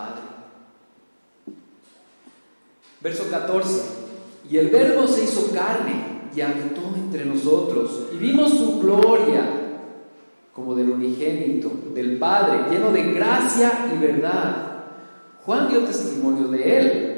Verso 14. Y el Verbo se hizo carne y habitó entre nosotros, y vimos su gloria como del unigénito del Padre, lleno de gracia y verdad. Juan dio testimonio de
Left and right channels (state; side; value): inverted; both; correlation -1.00